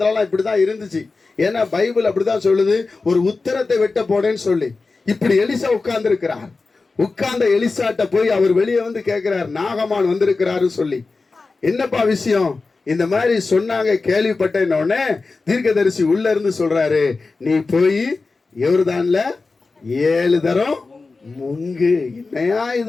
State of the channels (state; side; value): quieter; right; 3.9 dB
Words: இப்படிதான் இருந்துச்சு. ஏன்னா பைபிள் அப்படிதான் சொல்லுது, ஒரு உத்தரத்தை வெட்ட போனேன்னு சொல்லி. இப்படி எலிசா உட்கார்ந்து இருக்கிறார். உட்கார்ந்த எலிசாட்ட போய் அவர் வெளியே வந்து கேட்கிறார், நாகமான் வந்திருக்கிறாரு சொல்லி. என்னப்பா விஷயம்? இந்த மாதிரி சொன்னாங்க, கேள்விப்பட்டேன். உடனே தீர்க்கதரிசி உள்ள இருந்து சொல்றாரு, நீ போய் யோர்தான்ல 7 தரம் முங்கு. என்னையா